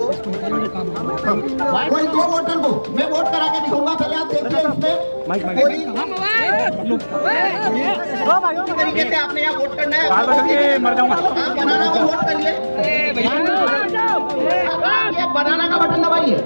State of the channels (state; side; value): inverted; both; correlation -1.00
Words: को मैं वोट करा के दिखाऊंगा, पहले आप देखिए इसमें कोई तरीके से आपने यहाँ वोट करना है, आप बनाना को वोट करिए, ये बनाना का बटन दबाइए,